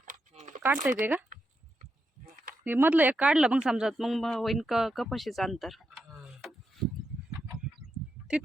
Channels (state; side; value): normal; both; correlation 0.84